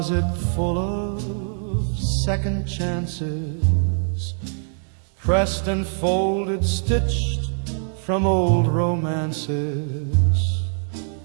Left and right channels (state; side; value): silent; left; digital silence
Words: full of second chances, pressed and folded, stitched from old romances.